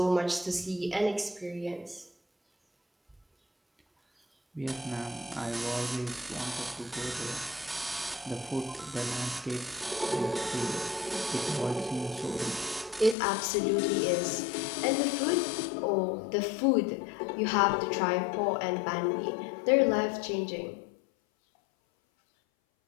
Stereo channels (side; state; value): right; drops out; at 13.2 s